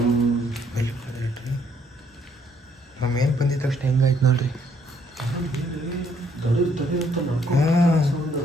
ನಮ್ಮ ಮೇಲೆ ಬಂದಿದ್ದ ತಕ್ಷಣ ಹೆಂಗಾಯ್ತು ನೋಡ್ರಿ.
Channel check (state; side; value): normal; both; correlation 0.68